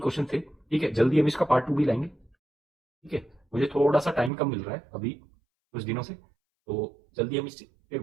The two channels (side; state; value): left; drops out; at 4.3 s